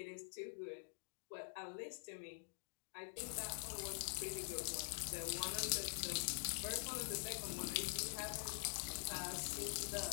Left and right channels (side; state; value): right; silent; digital silence